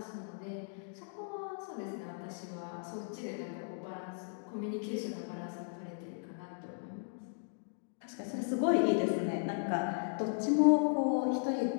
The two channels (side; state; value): right; silent; digital silence